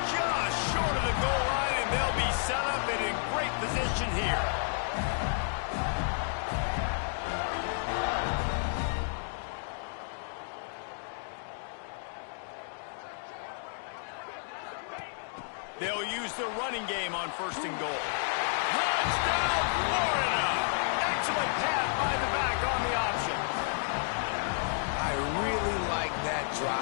just short of the goal line, and they'll be set up and in great position here. They'll use the running game on first and goal. Touchdown, Florida! Excellent pass by the back on the option. I really like that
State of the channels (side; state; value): right; silent; digital silence